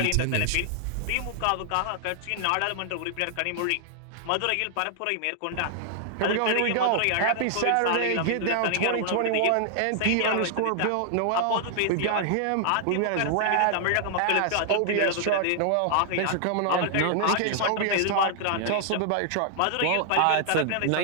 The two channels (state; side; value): different; both; correlation -0.01